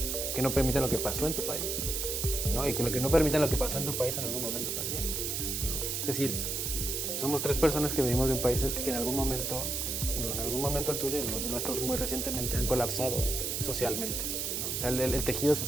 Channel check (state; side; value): noise; right; hiss, 1 dB below the sound